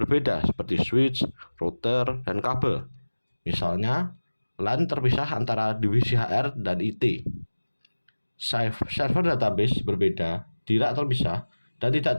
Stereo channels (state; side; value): inverted; both; correlation -1.00